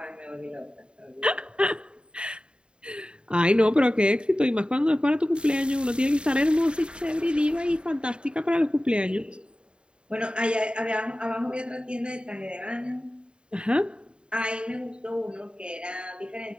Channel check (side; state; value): left; late; 0.052 ms